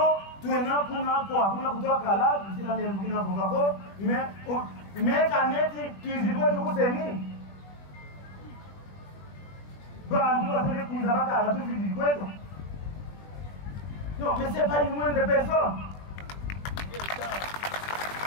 tuena kuna kutoa kala Sila mbina kukako Mais kaneti tuizidwe tukuseni Bandu wasele kuzabaka la tuizidwe Non, mais c'est pas une moindre personne.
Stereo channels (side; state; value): right; late; 20 ms